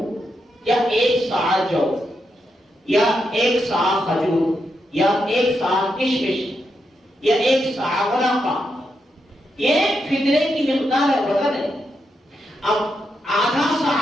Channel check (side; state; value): both; normal; correlation 0.83